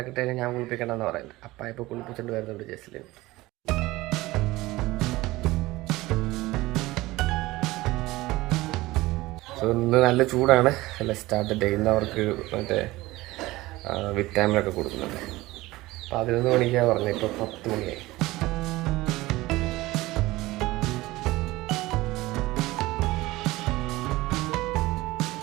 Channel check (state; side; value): quieter; left; 19.1 dB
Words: ഞാൻ കുളിപ്പിക്കണമെന്ന് പറയുന്നത്. അപ്പ ഇപ്പോൾ കുളിപ്പിച്ചുകൊണ്ട് വരുന്നുണ്ട് ജസ്റ്റിന്. സോ ഇന്ന് നല്ല ചൂടാണ്. അല്ല സ്റ്റാർട്ട് ഡേ. ഇന്ന് അവർക്ക് മറ്റേ വിറ്റാമിനൊക്കെ കൊടുക്കുന്നുണ്ട്. 11 മണിക്കാണ് പറഞ്ഞത്, ഇപ്പോൾ 10 മണിയായി.